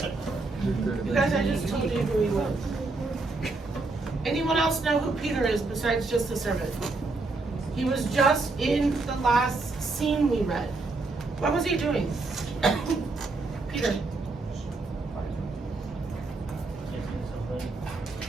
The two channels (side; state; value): left; quieter; 3.5 dB